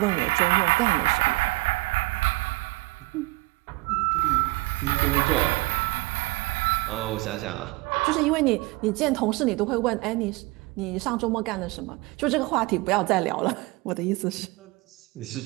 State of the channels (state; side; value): quieter; left; 22.6 dB